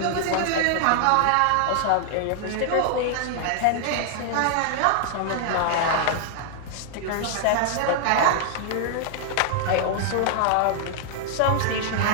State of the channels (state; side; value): different; both; correlation 0.00